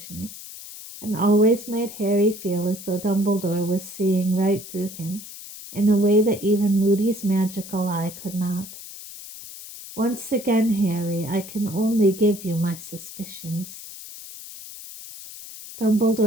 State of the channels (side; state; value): left; noise; hiss, 14 dB below the sound